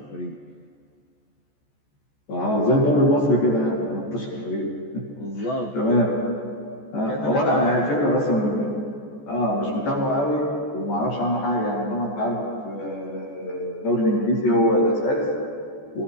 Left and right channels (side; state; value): right; late; 14 ms